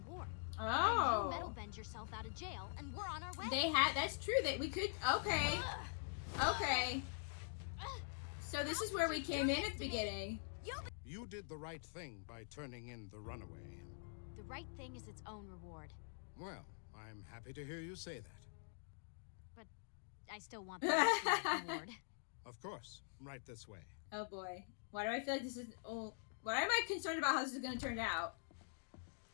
And you metal Oh. bend yourself out of jail, and we're on our way. That's true, that we could, okay. Okay. So this is where we came in at the beginning. You did the right thing by turning in the Runaway. The right thing is its own reward. Well, I'm happy to hear you say that. But I still want the ultimate reward. Of course, right this way. Oh boy. Why do I feel like this is, why am I concerned about how this is going to turn out?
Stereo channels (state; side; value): silent; right; digital silence